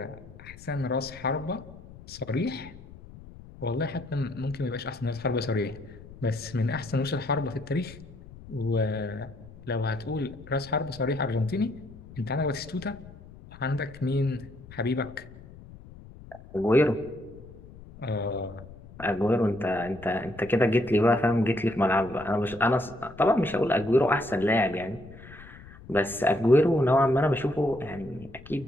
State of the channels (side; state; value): left; noise; rumble, 18 dB below the sound